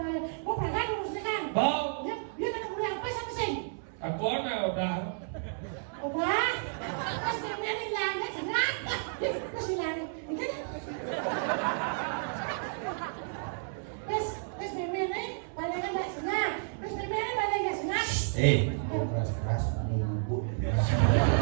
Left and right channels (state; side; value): silent; left; 57 dB below the other